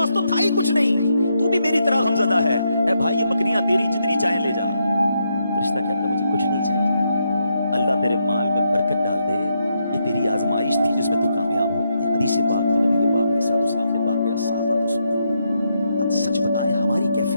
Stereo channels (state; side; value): inverted; both; correlation -0.81